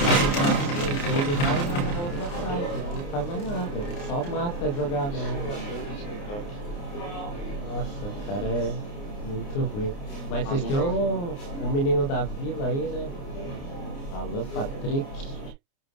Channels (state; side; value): late; right; 29 ms